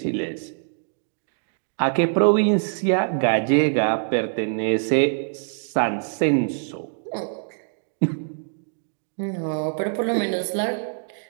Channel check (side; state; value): left; silent; digital silence